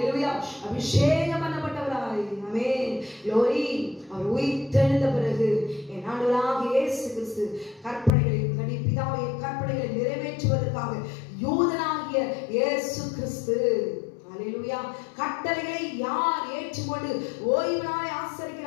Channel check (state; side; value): drops out; right; at 8.1 s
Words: அபிஷேகம் பண்ணப்பட்டவராய். ஆமென். க்ளோரி. அவர் உயிர்த்தெழுந்த பிறகு என் ஆண்டவராகிய இயேசு கிறிஸ்து கற்பனைகளை பிதாவுடைய கற்பனைகளை நிறைவேற்றுவதற்காக யூதனாகிய இயேசு கிறிஸ்து. ஹல்லேலூயா. கட்டளைகளை யார் ஏற்றுக்கொண்டு ஓய்வு நாளை